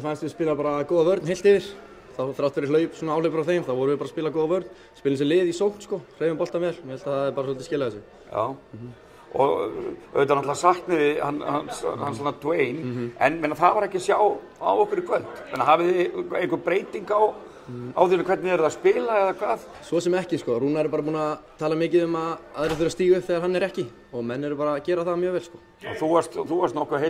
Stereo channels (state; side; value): identical; both; correlation 1.00